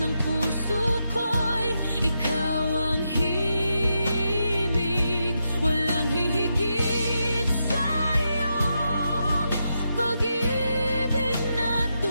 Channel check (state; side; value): inverted; both; correlation -0.84